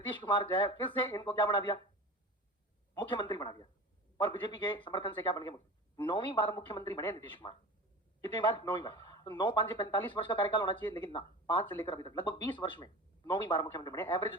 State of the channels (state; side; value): normal; both; correlation 0.34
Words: कुमार जो है फिर से इनको क्या बना दिया? मुख्यमंत्री बना दिया। और बीजेपी के समर्थन से क्या बन गए? 9वीं बार मुख्यमंत्री बने नीतीश कुमार। कितनी बार? 9वीं बार। तो 9 5 45 वर्ष का कार्यकाल होना चाहिए, लेकिन ना, 5 से लेकर अभी तक लगभग 20 वर्ष में 9वीं बार मुख्यमंत्री बने। एवरेज